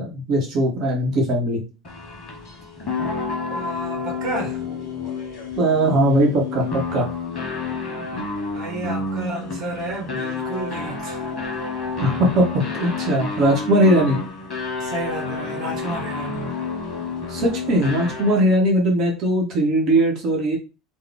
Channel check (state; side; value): normal; both; correlation 0.31